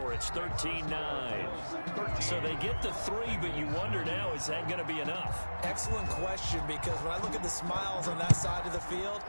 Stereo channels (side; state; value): both; inverted; correlation -1.00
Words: It's 13-9. So they get the 3, but you wonder now, is that going to be enough? Excellent question, because when I look at the smiles on that side of the field,